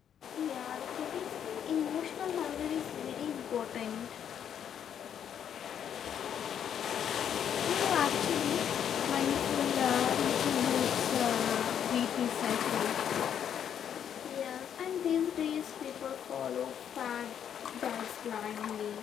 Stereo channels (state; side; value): quieter; right; 8.9 dB